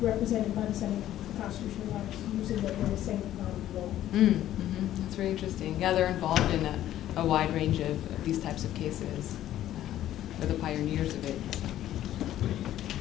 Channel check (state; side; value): quieter; right; 12.7 dB